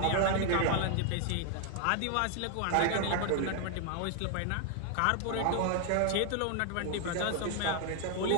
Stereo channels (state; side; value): different; both; correlation 0.00